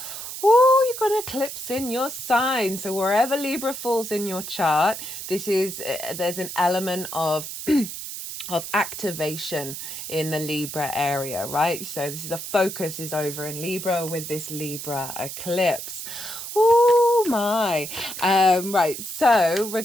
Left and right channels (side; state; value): right; noise; hiss, 8 dB below the sound